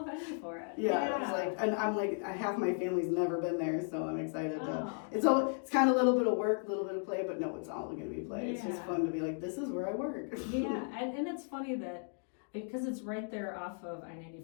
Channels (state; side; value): silent; right; 54 dB below the other